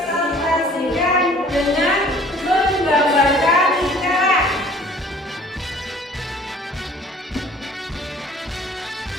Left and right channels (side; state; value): both; normal; correlation 0.52